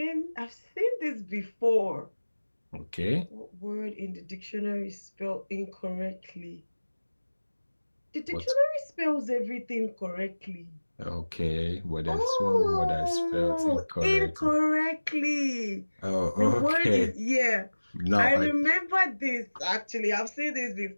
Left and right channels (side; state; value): both; inverted; correlation -1.00